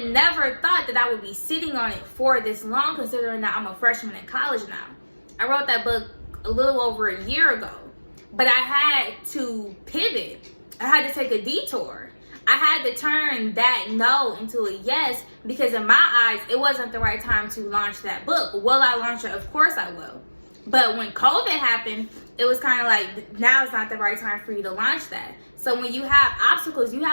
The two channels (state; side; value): inverted; both; correlation -1.00